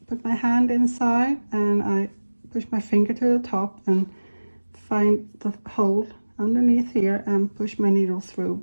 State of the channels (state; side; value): inverted; both; correlation -1.00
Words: put my hand inside and I push my finger to the top and find the hole underneath here and push my needle through